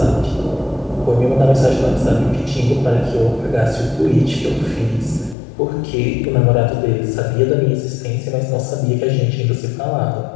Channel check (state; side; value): drops out; right; at 5.4 s